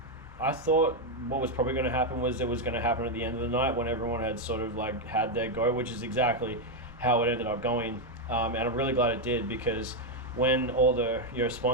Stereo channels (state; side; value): normal; both; correlation 0.03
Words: I thought what was probably going to happen was it was going to happen at the end of the night when everyone had sort of like had their go, which is exactly how it ended up going. And I'm really glad it did, because when all the